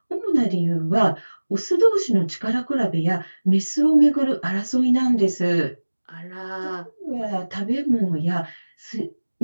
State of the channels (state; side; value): inverted; both; correlation -1.00